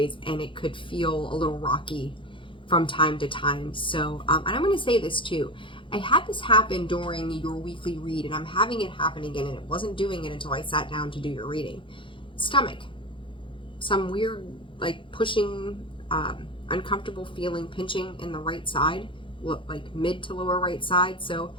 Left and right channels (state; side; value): late; right; 0.25 ms